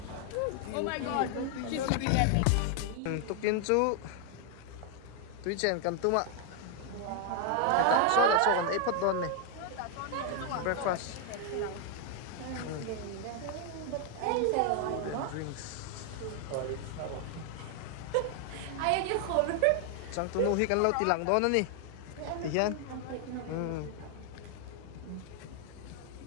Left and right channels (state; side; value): different; both; correlation 0.00